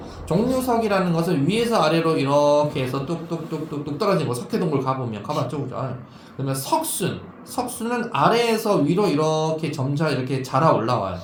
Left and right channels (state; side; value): identical; both; correlation 1.00